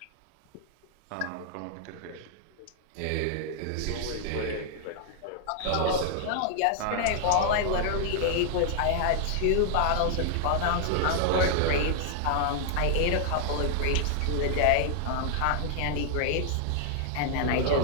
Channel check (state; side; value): different; both; correlation -0.01